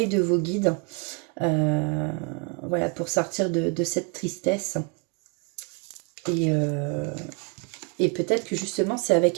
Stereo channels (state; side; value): quieter; left; 32.0 dB